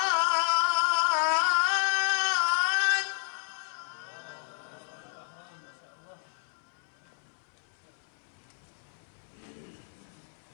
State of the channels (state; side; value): silent; right; 57 dB below the other